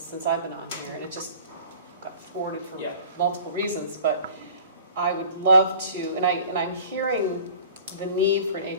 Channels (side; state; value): both; inverted; correlation -0.45